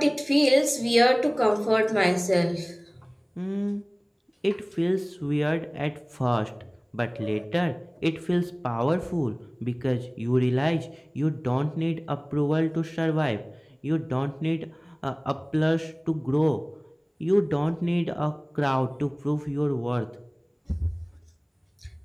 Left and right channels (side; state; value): both; identical; correlation 1.00